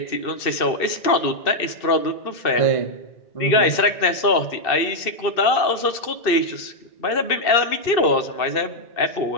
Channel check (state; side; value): late; right; 2.6 ms